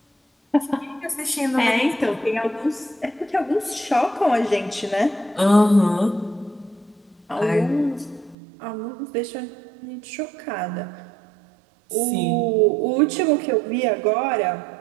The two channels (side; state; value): left; drops out; at 8.3 s